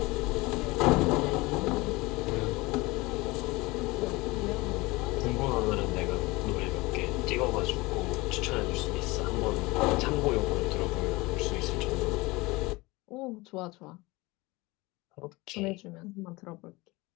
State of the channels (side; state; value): right; quieter; 22.6 dB